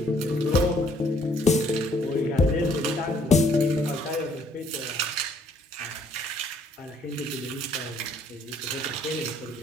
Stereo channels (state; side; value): normal; both; correlation 0.64